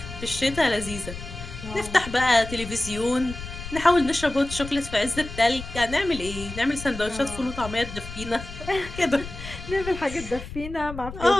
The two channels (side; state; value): left; noise; rumble, 11 dB below the sound